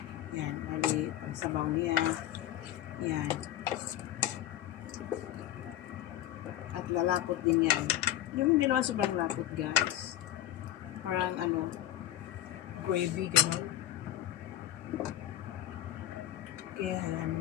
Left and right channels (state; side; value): quieter; right; 13.3 dB